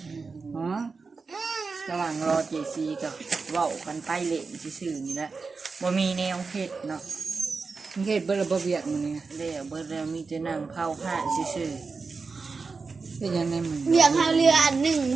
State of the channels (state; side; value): quieter; left; 4.5 dB